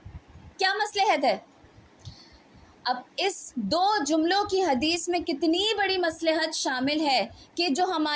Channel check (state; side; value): identical; both; correlation 1.00